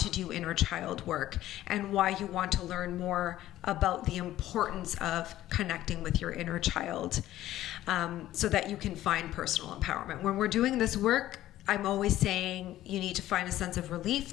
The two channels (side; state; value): right; quieter; 14.1 dB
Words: do inner child work, and why you want to learn more about the importance of connecting with your inner child, so that you can find personal empowerment. When we're doing this work, I'm always saying you need to find a sense of